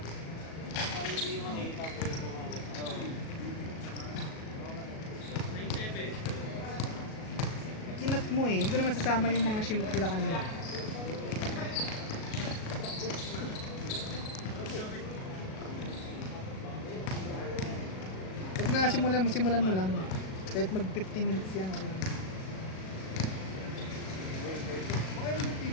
Parang hindi makita ko yung bumalat. Kinat mo eh, hindi ko na masasama yung mga shoot nila kanina. Huwag na simulan mo lang. Kahit mag 15 minutes yan. Okay.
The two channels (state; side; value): late; right; 37 ms